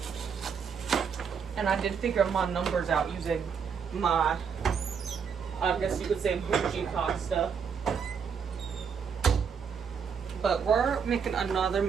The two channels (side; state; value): left; quieter; 6.6 dB